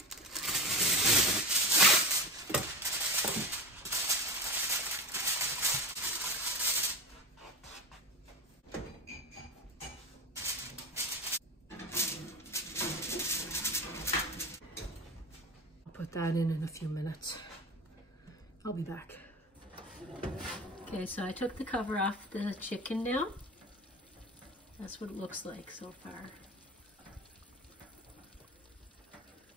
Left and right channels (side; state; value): both; normal; correlation 0.25